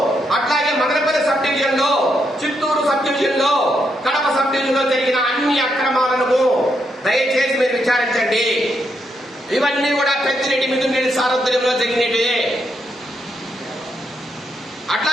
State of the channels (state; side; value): normal; both; correlation 0.79